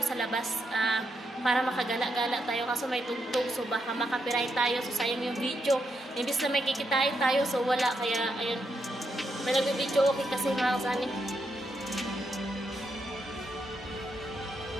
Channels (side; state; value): both; normal; correlation 0.81